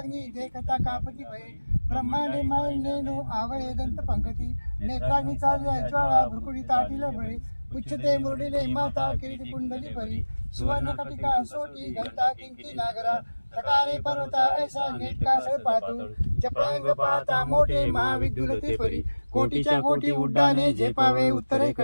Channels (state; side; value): inverted; both; correlation -1.00